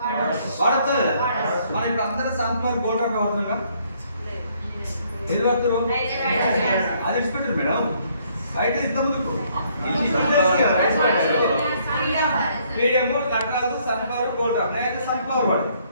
మనం ఇప్పుడు అందరూ సన్ఫ్లవర్ గోల్డ్ ఆఫ్ వాడుతున్నాం. ఏది వాడుతున్నాం? అది ఇచ్చిపెట్టారు మేడం. బయట ఇంత ముందుకు medium Nataraju sunflower gold of. నేనైతే సన్ఫ్లవర్ వాడు,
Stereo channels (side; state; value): both; inverted; correlation -0.67